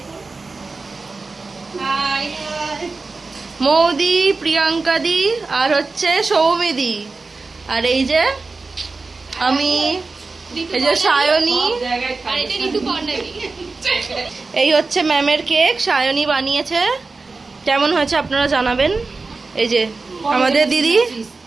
হাই মৌদি, প্রিয়াঙ্কা দি আর হচ্ছে সৌমিদি, আর এই যে আমি, এই যে সায়নী, আর এটা ঋতুপর্ণা দি। এই হচ্ছে ম্যামের কেক, সায়নী বানিয়েছে। কেমন হয়েছে আপনারা জানাবেন। এই যে আমাদের দিদি,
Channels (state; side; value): quieter; left; 3.9 dB